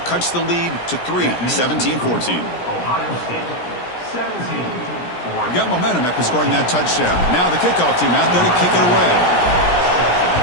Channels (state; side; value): late; right; 17 ms